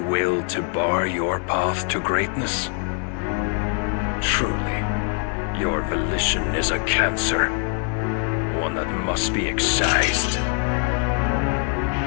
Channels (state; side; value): quieter; right; 38.6 dB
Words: to bar your path to greatness? Truly, your volition is a cancer, one that must be excised.